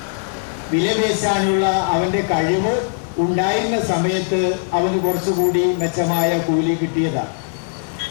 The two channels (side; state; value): right; silent; 55 dB below the other